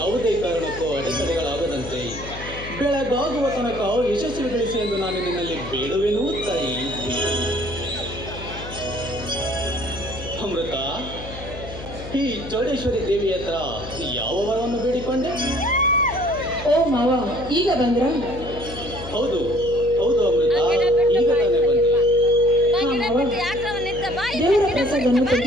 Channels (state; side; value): noise; left; hum, 12 dB below the sound